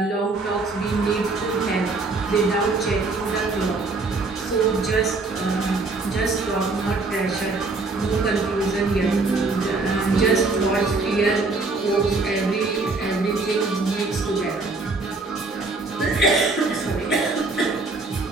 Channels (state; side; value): quieter; left; 3.6 dB